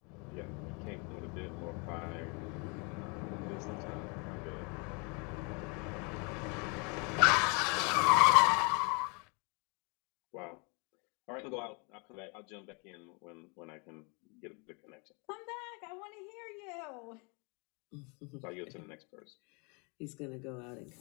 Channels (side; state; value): right; quieter; 32.4 dB